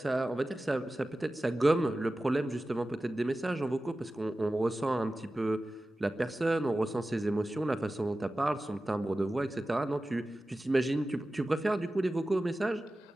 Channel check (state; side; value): normal; both; correlation 0.95